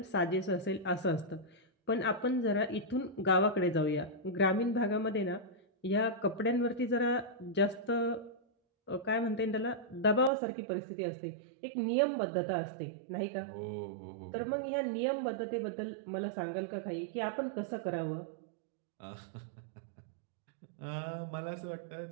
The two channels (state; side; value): drops out; left; at 10.3 s